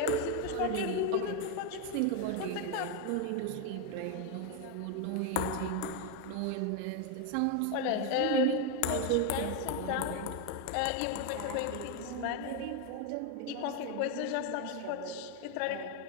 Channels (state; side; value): different; both; correlation 0.01